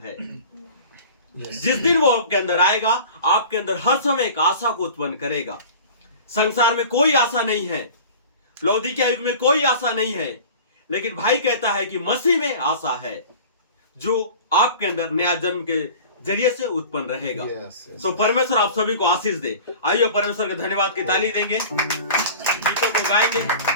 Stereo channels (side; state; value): both; inverted; correlation -0.40